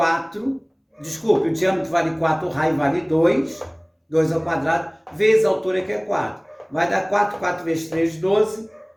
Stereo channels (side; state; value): both; identical; correlation 1.00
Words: Desculpe, o diâmetro vale 4, o raio vale 2, 2 ao quadrado, vezes a altura que é 4. Vai dar 4, 4 vezes 3, 12,